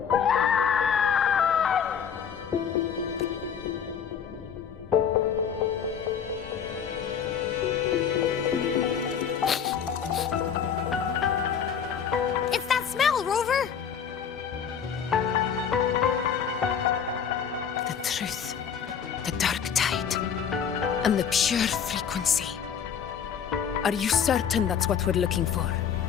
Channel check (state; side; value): quieter; right; 7.6 dB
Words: And the pure frequency. Are you certain that's what we're looking for?